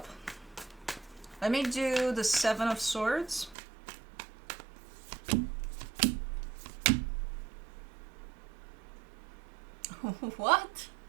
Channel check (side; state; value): left; drops out; at 3.6 s